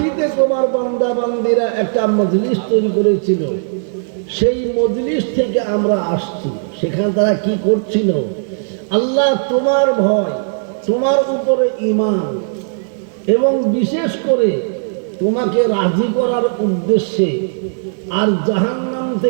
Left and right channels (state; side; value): silent; left; 60 dB below the other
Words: তোমার বান্দা বান্দিরা একটা মজলিস তৈরি করেছিল, সেই মজলিস থেকে আমরা আসছি। সেখানে তারা কি করছিল? আল্লাহ, তোমার ভয়, তোমার উপরে ঈমান এবং বিশেষ করে তোমাকে রাজি করার উদ্দেশ্যে, আর জাহান্নাম